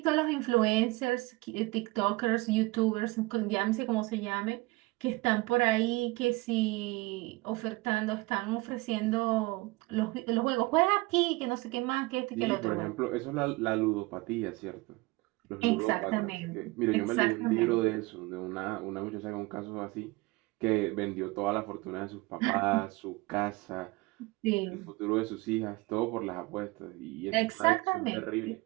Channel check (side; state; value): left; quieter; 22.7 dB